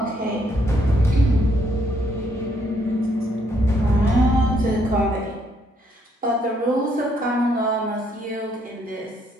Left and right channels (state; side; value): normal; both; correlation 0.71